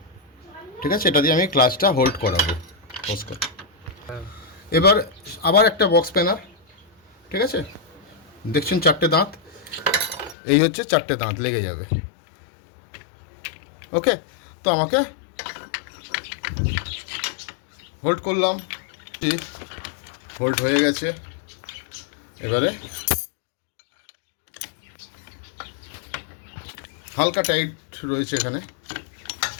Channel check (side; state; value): right; drops out; at 10.4 s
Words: ঠিক আছে। এটা দিয়ে আমি ক্লাচটা হোল্ড করাবো ওস্কার। এবার আবার একটা বক্স স্প্যানার, ঠিক আছে। দেখছেন 4টে দাঁত, এই হচ্ছে 4টে দাঁত লেগে যাবে। ওকে, তো আমাকে হোল্ড করলাম, হোল্ড হয়ে গেছে। এবারে হালকা টাইট রয়েছে এখানে,